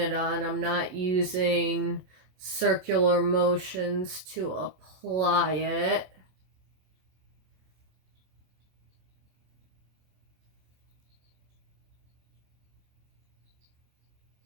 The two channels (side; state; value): left; late; 27 ms